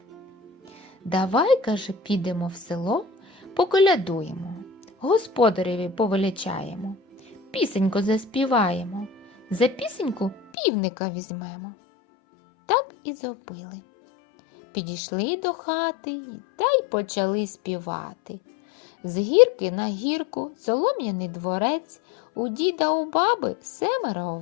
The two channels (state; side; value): drops out; right; at 10.5 s